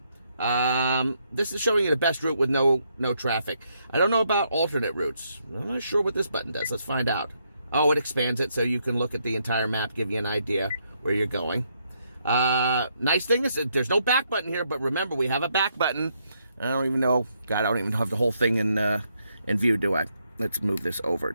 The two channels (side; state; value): both; inverted; correlation -0.76